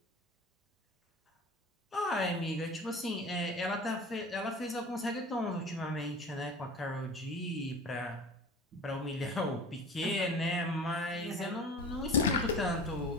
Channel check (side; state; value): both; normal; correlation 0.37